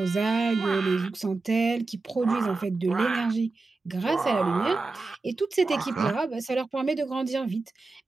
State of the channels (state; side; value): quieter; left; 3.7 dB